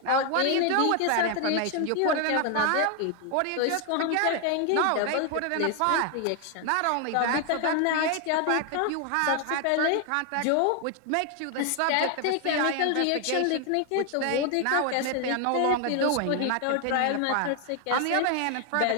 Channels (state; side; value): different; both; correlation 0.00